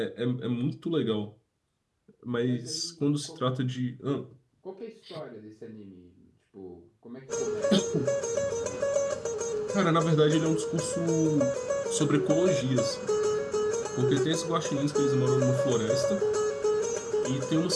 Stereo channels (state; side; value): identical; both; correlation 1.00